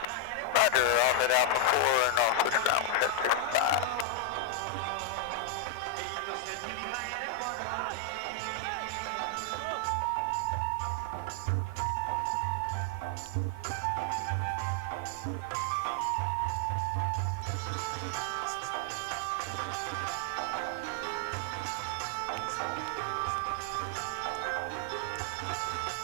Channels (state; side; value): different; both; correlation 0.00